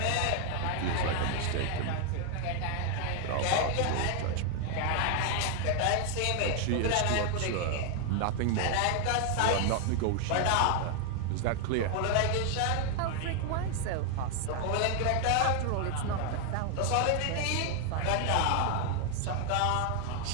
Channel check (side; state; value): both; different; correlation 0.00